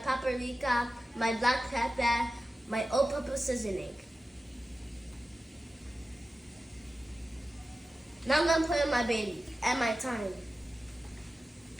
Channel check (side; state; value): both; normal; correlation 0.94